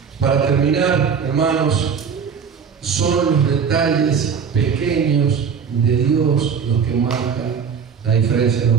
Para terminar, hermanos, son los detalles pequeños de Dios los que marcan la diferencia de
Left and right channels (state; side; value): quieter; left; 6.6 dB